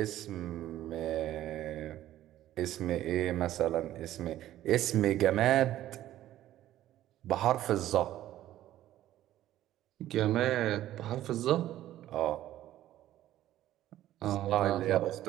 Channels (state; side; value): quieter; left; 13.5 dB